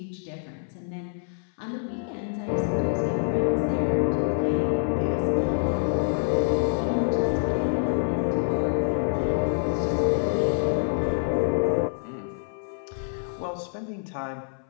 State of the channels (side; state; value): right; silent; 59 dB below the other